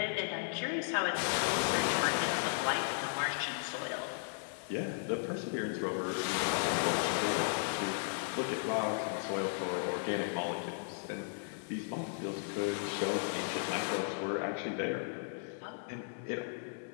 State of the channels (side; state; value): right; silent; digital silence